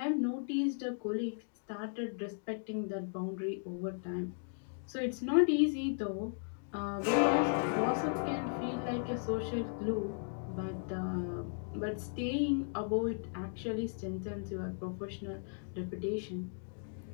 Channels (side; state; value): right; silent; digital silence